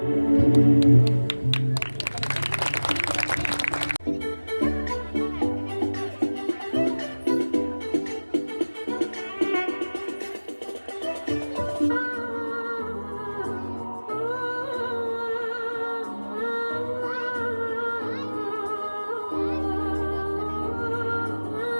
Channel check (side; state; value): both; inverted; correlation -1.00